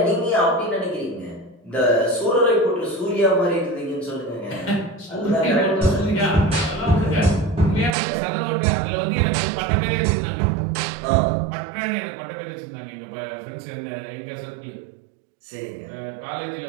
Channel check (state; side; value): drops out; left; at 8.0 s